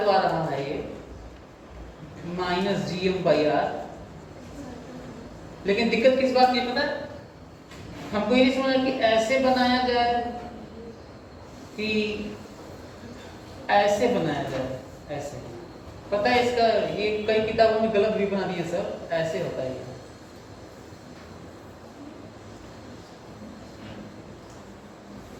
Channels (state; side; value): identical; both; correlation 1.00